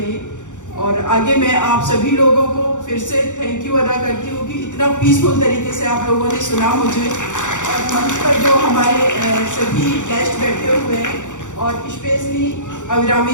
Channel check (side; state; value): right; late; 0.85 ms